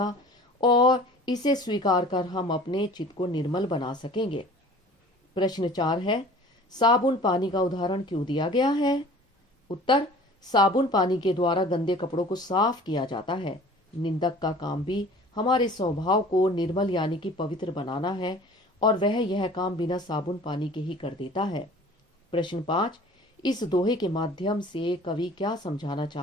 और इसे स्वीकार कर हम अपने चित्त को निर्मल बना सकेंगे। प्रश्न 4 है, साबुन पानी का उदाहरण क्यों दिया गया है? उत्तर, साबुन पानी के द्वारा गंदे कपड़ों को साफ किया जाता है। निंदक का काम भी हमारे स्वभाव को निर्मल यानी कि पवित्र बनाना है और वह यह काम बिना साबुन पानी के ही कर देता है। प्रश्न 5, इस दोहे के माध्यम से कवि क्या समझाना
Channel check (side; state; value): both; normal; correlation 0.46